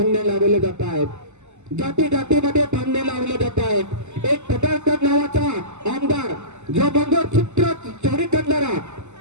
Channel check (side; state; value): left; late; 0.83 ms